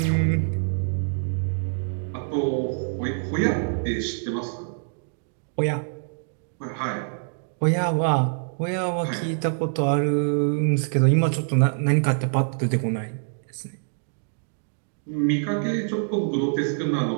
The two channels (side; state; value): left; silent; digital silence